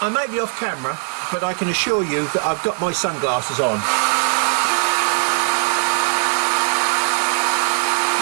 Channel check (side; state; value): left; silent; 55 dB below the other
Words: I may be off camera, but I can assure you that I've got my sunglasses on.